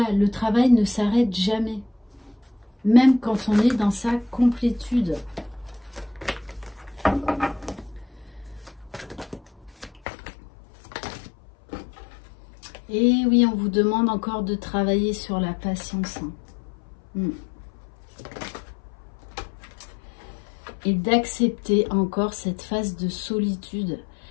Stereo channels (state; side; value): drops out; right; at 10.0 s